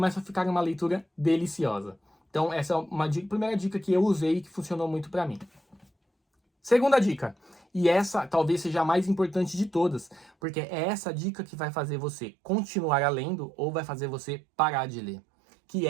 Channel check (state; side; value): drops out; left; at 10.3 s